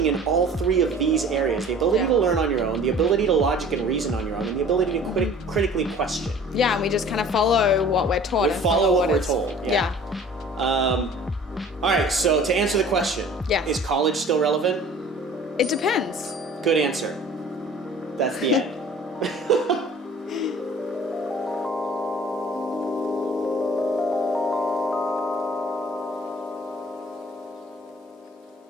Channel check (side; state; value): both; normal; correlation 0.47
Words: in all three of these areas: the ability to learn on your own, the ability to logic and reason on your own, and the ability to critically question. Yeah, and we just kind of follow what we're taught. We follow what we're told. Yeah. All right. So to answer the question, is college still relevant? It depends. Good answer. That's the end.